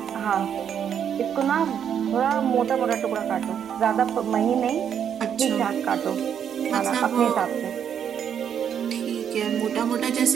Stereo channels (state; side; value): quieter; left; 8.5 dB